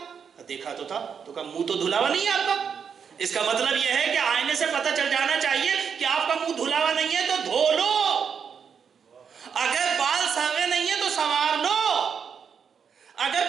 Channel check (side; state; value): left; quieter; 6.8 dB